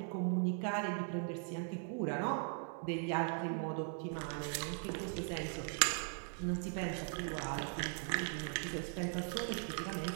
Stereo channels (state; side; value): silent; left; 51 dB below the other